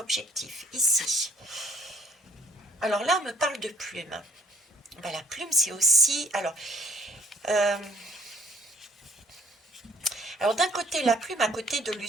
ici. Alors là, on me parle de plume. Ben, la plume, c'est aussi... euh, alors d'un côté, la plume, à côté de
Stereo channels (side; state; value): both; normal; correlation 0.62